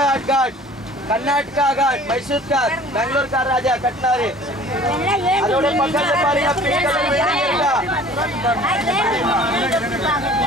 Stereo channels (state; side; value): normal; both; correlation 0.48